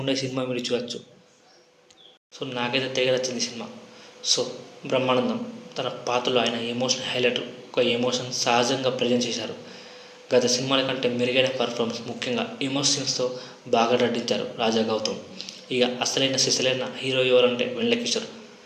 సినిమా మీరు చూడవచ్చు. సో నాకైతే తెగ నచ్చింది సినిమా. సో బ్రహ్మానందం తన పాత్రలో ఆయన ఎమోషన్ హైలైట్, ఒక ఎమోషన్ సహజంగా ప్రజెంట్ చేశారు. గత సినిమాల కంటే మెరుగైన పర్ఫార్మెన్స్, ముఖ్యంగా ఎమోషన్స్తో బాగా నటించారు రాజా గౌతమ్. ఇక అసలైన సిసలైన హీరో ఎవరంటే వెన్నెల కిషోర్.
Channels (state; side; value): identical; both; correlation 1.00